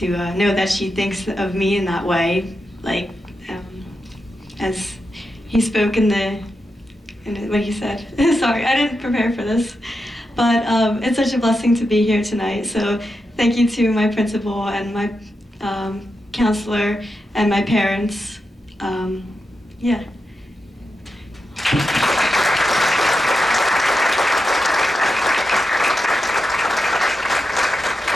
know that she thinks of me in that way. Like, as he spoke in what he said. Sorry, I didn't prepare for this. But it's such a blessing to be here tonight. So thank you to my principal and my counselor and my parents. Yeah.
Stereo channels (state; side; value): normal; both; correlation 0.87